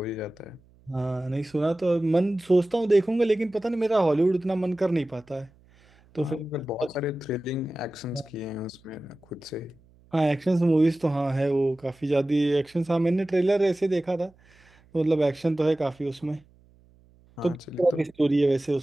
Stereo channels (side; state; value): right; noise; hum, 30 dB below the sound